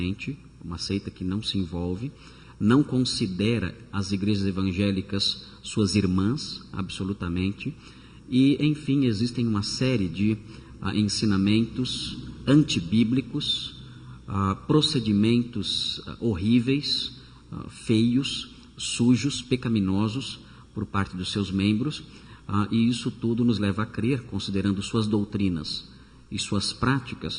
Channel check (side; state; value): both; identical; correlation 1.00